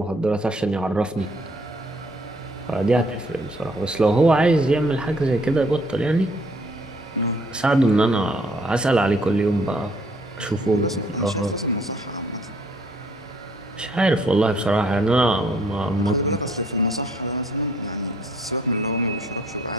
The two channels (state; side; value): normal; both; correlation 0.63